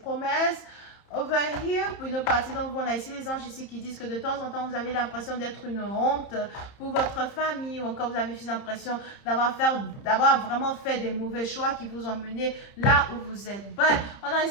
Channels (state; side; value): late; right; 30 ms